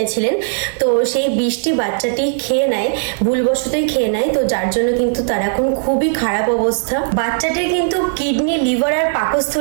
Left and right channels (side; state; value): left; silent; digital silence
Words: তো সেই বিষটি বাচ্চাটি খেয়ে নেয়, ভুলবশতই খেয়ে নেয়, তো যার জন্য কিন্তু তার এখন খুবই খারাপ অবস্থা। বাচ্চাটির কিন্তু কিডনি, লিভার আর